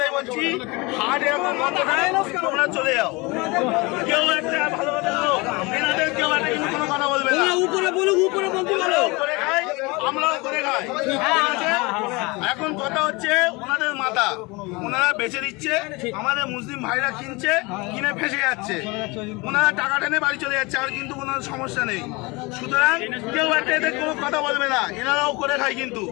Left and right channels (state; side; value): quieter; right; 25.5 dB